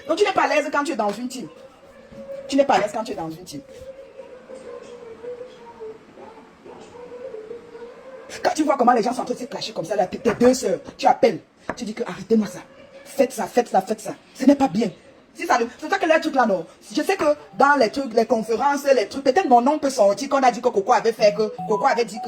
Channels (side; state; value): both; identical; correlation 1.00